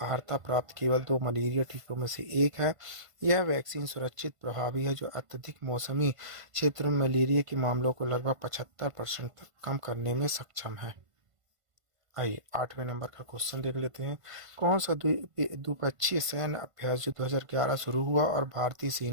अर्हता प्राप्त केवल 2 मलेरिया टीकों में से एक है। यह वैक्सीन सुरक्षित, प्रभावी है जो अत्यधिक मौसमी क्षेत्रों में मलेरिया के मामलों को लगभग 75% तक कम करने में सक्षम है। आइए 8वें नंबर का क्वेश्चन देख लेते हैं। कौन सा द्विपक्षीय सैन्य अभ्यास जो 2011 शुरू हुआ और भारतीय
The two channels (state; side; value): late; left; 1.5 ms